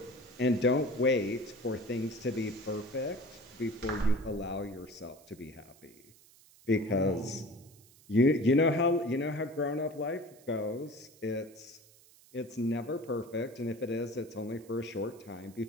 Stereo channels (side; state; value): right; noise; hiss, 26 dB below the sound